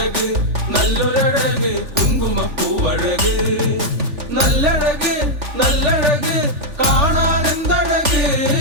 നല്ലൊരഴക് കുങ്കുമപ്പൂവഴക്, നല്ലഴക് നല്ലഴക് കാണാൻ എന്തഴക്,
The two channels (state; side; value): late; left; 3.4 ms